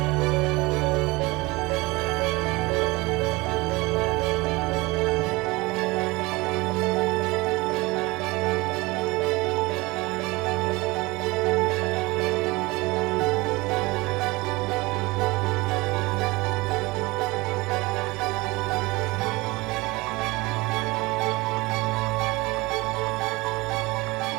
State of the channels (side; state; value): left; quieter; 22.7 dB